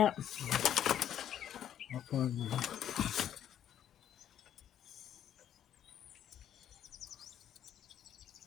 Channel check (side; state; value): right; quieter; 10.3 dB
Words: I'll find one.